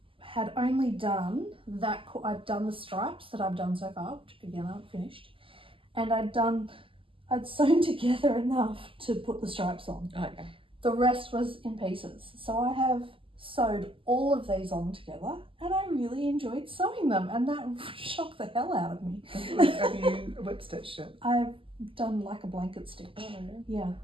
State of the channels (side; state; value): left; late; 0.25 ms